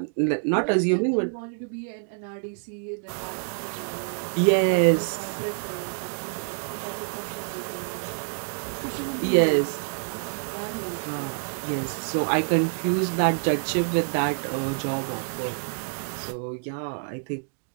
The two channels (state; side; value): silent; left; 60 dB below the other